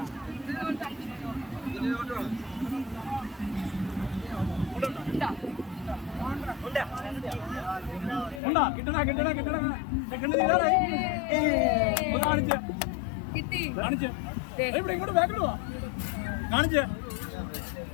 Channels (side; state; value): right; drops out; at 8.4 s